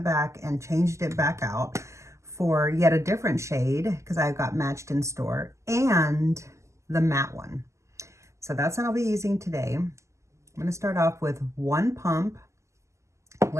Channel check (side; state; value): left; late; 0.14 ms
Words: back and changed it back out for yet a different shade, because I got matched in store, and the matte one. So that's what I'll be using today. I'm going to start off with one pump.